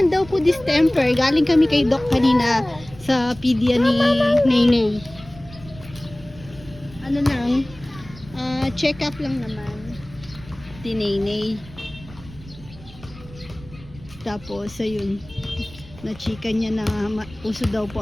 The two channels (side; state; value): right; noise; rumble, 19 dB below the sound